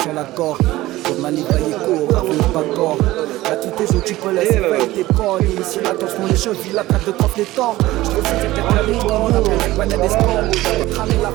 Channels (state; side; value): quieter; left; 17.2 dB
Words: l'accord. Comme manivailler court, revenu pas corps. Gratuité, je tu peux laisser faire tes corps. Ici, attention, les chevilles, la traite de coffre, les torts. Je te fais cette la ligne, on appelle la planète des sports. On va cramer la